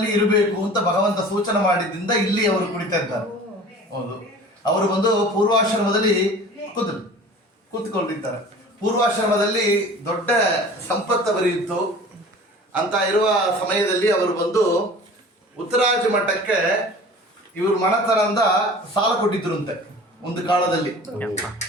ಇರಬೇಕು ಅಂತ ಭಗವಂತ ಸೂಚನೆ ಮಾಡಿದ್ದರಿಂದ ಇಲ್ಲಿ ಅವರು ಕುಳಿತಾ ಇದ್ದಾರೆ. ಹೌದು, ಅವರು ಬಂದು ಪೂರ್ವಾಶ್ರಮದಲ್ಲಿ ಕೂತ್ಕೊಂಡಿದ್ದಾರೆ. ಪೂರ್ವಾಶ್ರಮದಲ್ಲಿ ದೊಡ್ಡ ಸಂಪತ್ತು ಬರೆಯಿತು ಅಂತ ಇರುವ ಸಮಯದಲ್ಲಿ ಅವರು ಬಂದು ಉತ್ತರಾಜ ಮಠಕ್ಕೆ ಇವರು ಮಣತನದಿಂದ ಸಾಲ ಕೊಟ್ಟಿದ್ರಂತೆ. ಒಂದು ಕಾಲದಲ್ಲಿ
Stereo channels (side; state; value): both; normal; correlation 0.42